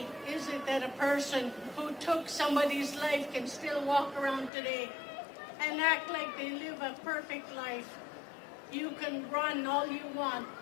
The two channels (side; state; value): right; drops out; at 4.5 s